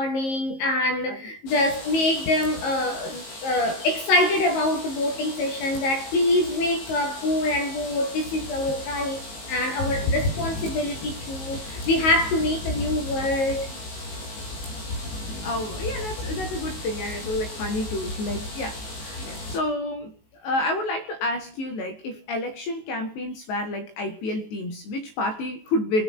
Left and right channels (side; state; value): right; late; 19 ms